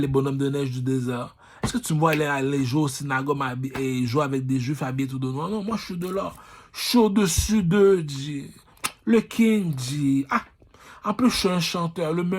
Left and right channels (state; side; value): identical; both; correlation 1.00